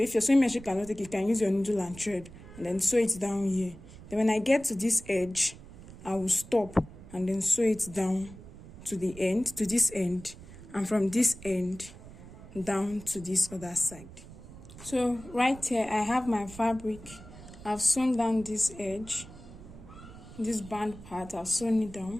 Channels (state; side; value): noise; right; rumble, 17 dB below the sound